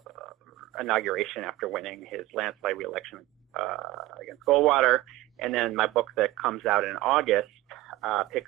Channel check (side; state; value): left; quieter; 17.2 dB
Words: inauguration after winning his landslide re-election against Goldwater. And then my book that comes out in August